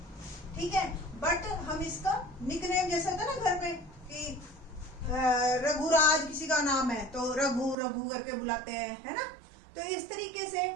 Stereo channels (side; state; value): left; drops out; at 7.8 s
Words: ठीक है। बट हम इसका निकनेम जैसे होता है ना घर में कि रघुराज किसी का नाम है तो रघु रघु करके बुलाते हैं, है ना। तो इस तरीके से